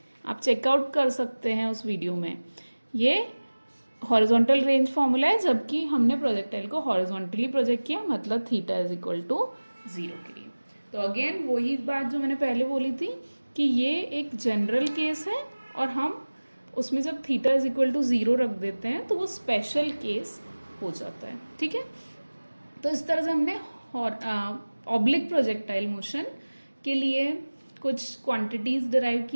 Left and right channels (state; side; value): inverted; both; correlation -1.00